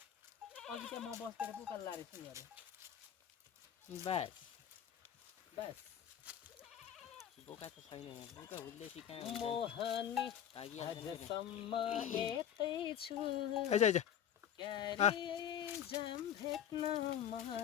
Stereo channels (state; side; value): quieter; right; 9.8 dB